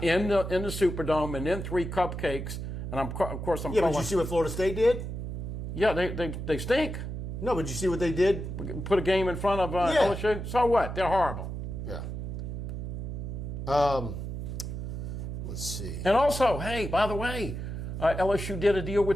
in the Superdome and then 3 cupcakes? And, of course, I'm Yeah, but you see what Florida State did? Yeah, they stink. No, but you see what they did? Put a game in front of LSU. So what? They're horrible. Yeah. Let's see. And also, hey, by the way, LSU did a deal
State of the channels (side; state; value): right; noise; hum, 5 dB below the sound